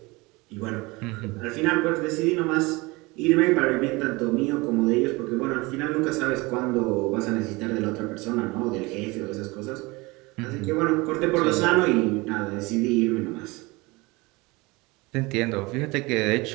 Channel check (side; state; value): left; quieter; 23.9 dB